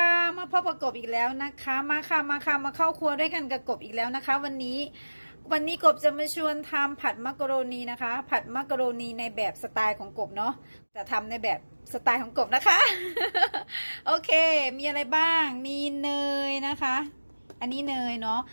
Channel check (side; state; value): both; inverted; correlation -1.00